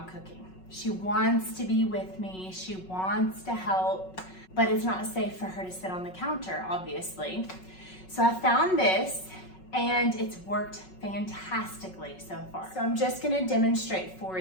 cooking. She wants to be with me, she wants to help, but it's not safe for her to sit on the counter, obviously. So I found this and it's worked fantastically so far. So I'm just gonna demonstrate for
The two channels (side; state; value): right; late; 5.4 ms